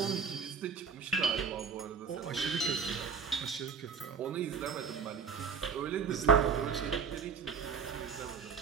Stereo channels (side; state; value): left; quieter; 6.0 dB